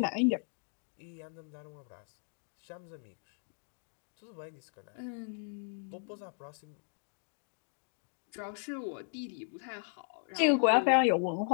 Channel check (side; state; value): right; silent; 54 dB below the other